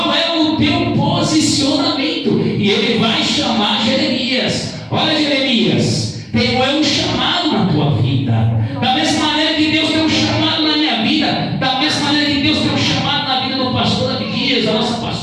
é o teu posicionamento. E Ele vai chamar Jeremias. Olha, Jeremias, tenho eu um chamado na tua vida. Da mesma maneira que Deus tem um chamado na minha vida, da mesma maneira que Deus tem um chamado na vida do pastor Abdias, a nossa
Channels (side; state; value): both; identical; correlation 1.00